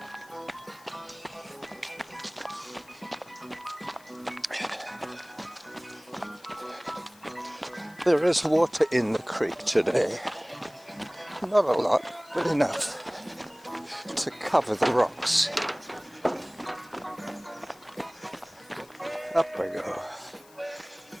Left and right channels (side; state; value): left; noise; hiss, 25 dB below the sound